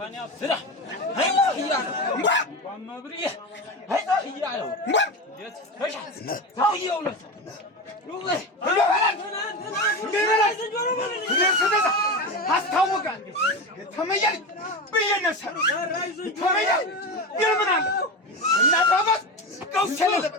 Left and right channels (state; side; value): normal; both; correlation 0.21